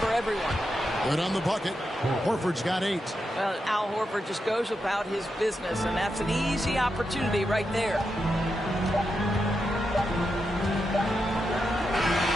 for everyone. Good on the bucket. Horford's got 8. Well, Al Horford just goes about his business, and that's an easy opportunity right there.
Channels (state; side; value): normal; both; correlation 0.86